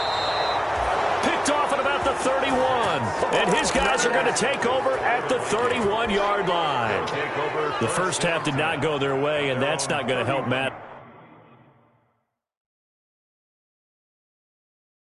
Picked off at about the 31. And his guys are going to take over at the 31-yard line. The first half did not go their way, and that's not going to help Matt.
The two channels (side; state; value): both; identical; correlation 1.00